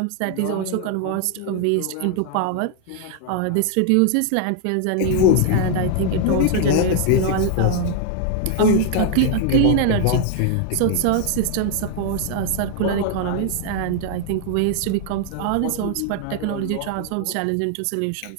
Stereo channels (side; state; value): both; different; correlation 0.00